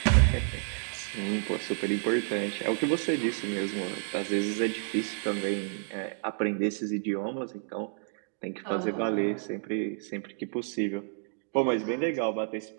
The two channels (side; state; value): left; silent; 58 dB below the other